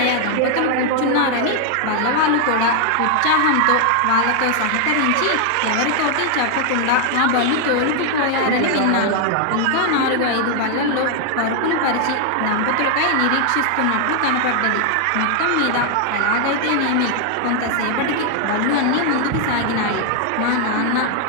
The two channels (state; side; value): different; both; correlation 0.00